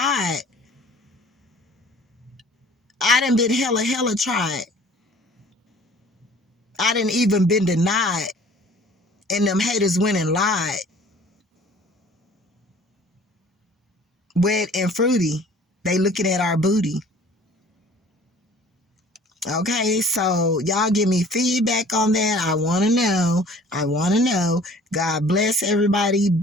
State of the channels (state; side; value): normal; both; correlation 0.50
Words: I done been hella tried. I done even been denied. And them haters went and lied. Wet and fruity. They looking at our booty. Okay, so y'all give me feedback on that. I want to know. I want to know. God bless everybody.